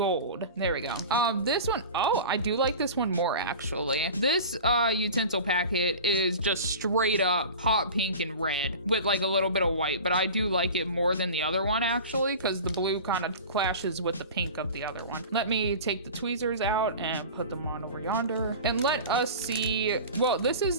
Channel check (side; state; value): both; inverted; correlation -0.35